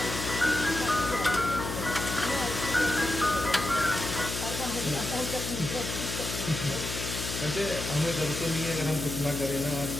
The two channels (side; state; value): left; noise; hum, 5 dB below the sound